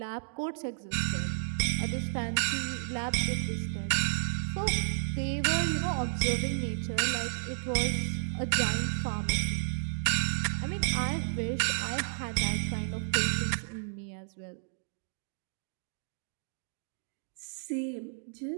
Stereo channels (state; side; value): silent; left; digital silence